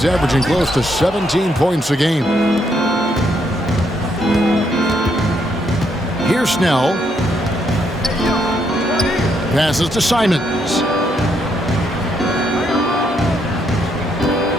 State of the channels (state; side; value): normal; both; correlation 0.75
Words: averaging close to 17 points a game. Here's Snell. Passes to Simons.